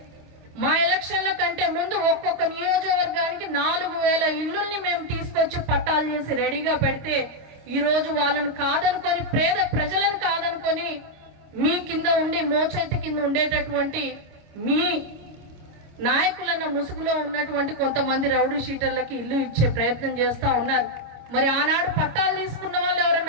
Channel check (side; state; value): left; late; 26 ms